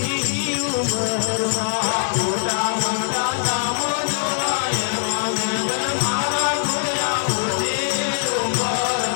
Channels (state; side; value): silent; right; digital silence